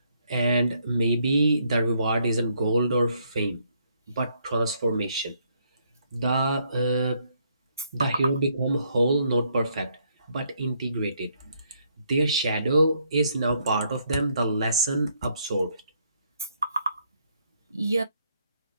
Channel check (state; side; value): inverted; both; correlation -0.72